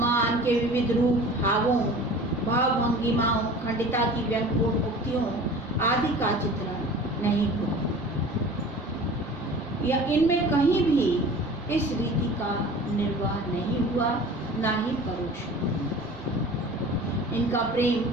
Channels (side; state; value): both; normal; correlation 0.41